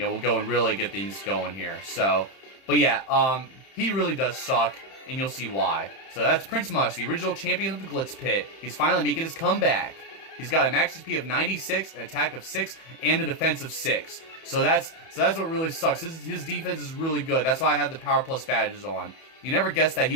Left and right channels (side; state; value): right; late; 31 ms